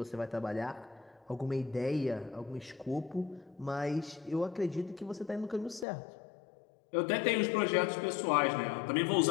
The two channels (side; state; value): right; drops out; at 5.9 s